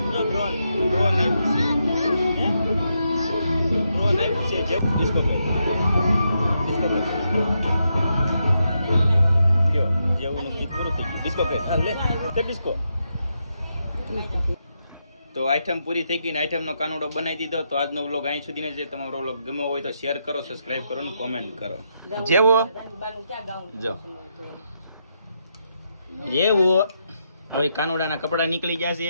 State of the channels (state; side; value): inverted; both; correlation -0.82